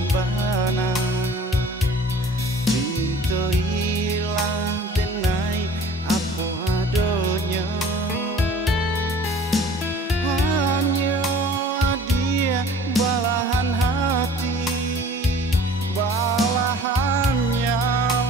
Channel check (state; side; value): normal; both; correlation 0.48